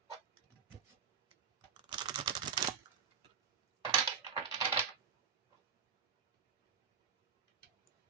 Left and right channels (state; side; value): quieter; left; 6.8 dB